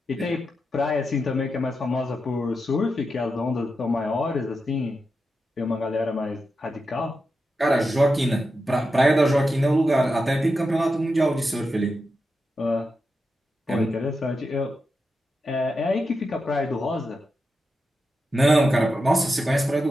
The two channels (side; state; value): both; normal; correlation 0.88